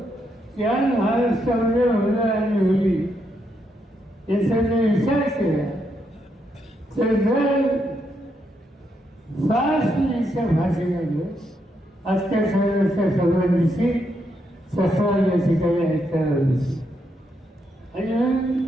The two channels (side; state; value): both; normal; correlation 0.79